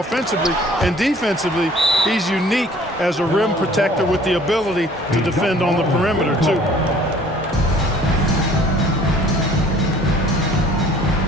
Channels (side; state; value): both; normal; correlation 0.53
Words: And defensively, he's unique as a rim protector with the ability to defend on the perimeter, too.